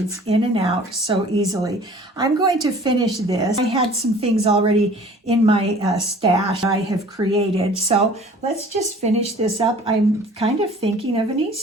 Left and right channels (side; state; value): both; normal; correlation 0.48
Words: in and out so easily. I'm going to finish this. I had some things already in my stash I have created. So let's just finish this up. I'm kind of thinking of an